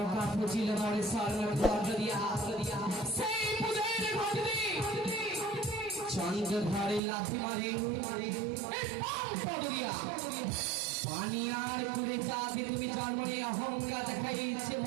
পুজিল মরে চন্দ্র ধরে লাথি মারে পানি আর কুলে চাঁদে তুমি জন্ম নিয়ে অহংকার দেখাইছে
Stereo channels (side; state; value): left; drops out; at 7.0 s